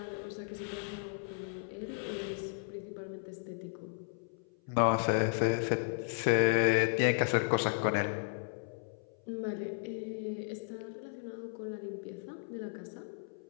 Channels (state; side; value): silent; right; 54 dB below the other